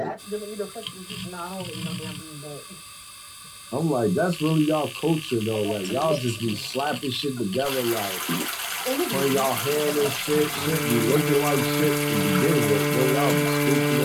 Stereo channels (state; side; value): identical; both; correlation 1.00